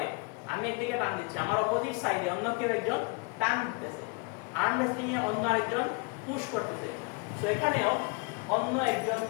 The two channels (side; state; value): right; quieter; 32.6 dB